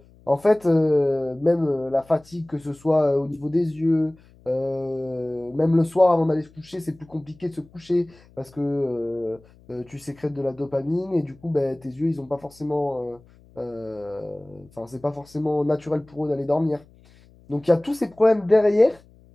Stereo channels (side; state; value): left; noise; hum, 27 dB below the sound